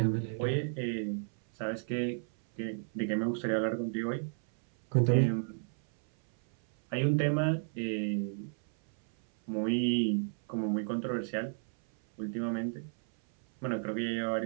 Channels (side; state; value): left; silent; 56 dB below the other